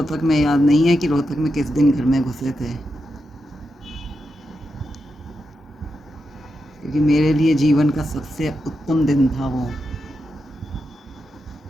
में याद नहीं है कि रोहतक में किस दिन घर में घुसे थे, क्योंकि मेरे लिए जीवन का सबसे उत्तम दिन था वो।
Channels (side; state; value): both; normal; correlation 0.87